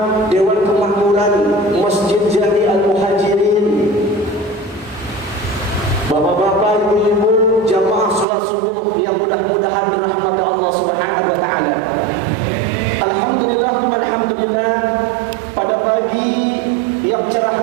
Dewan Kemakmuran Masjid Jami Al-Muhajirin, bapak-bapak, ibu-ibu, jamaah salat subuh yang mudah-mudahan dirahmati Allah Subhanahu wa taala. Alhamdulillah, alhamdulillah, pada pagi yang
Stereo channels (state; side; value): drops out; left; at 8.2 s